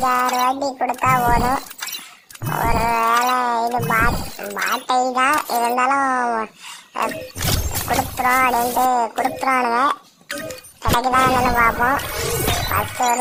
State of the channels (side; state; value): both; identical; correlation 1.00